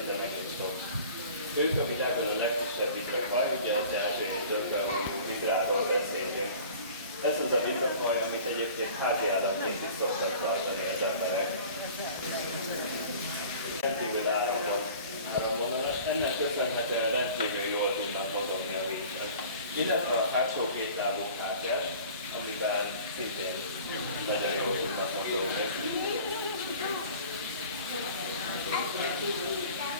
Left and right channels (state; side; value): inverted; both; correlation -0.45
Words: egész sok. Ők a világon a legkisebb vitrafaj, ugye az ázsiai dögbeoljú vidráról beszélünk. Ez az a vitrafaj, amit egyébként házi állatként is szoktak tartani az emberek. Rendkívül áramvonalas, ennek köszönhetően rendkívül jól tudnak mozogni a vízben. Illetve a hátsó két lábuk hátját, amiben szintén nagyon jól tudnak mozogni.